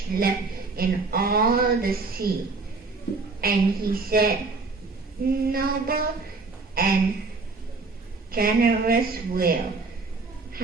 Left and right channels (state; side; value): quieter; left; 4.0 dB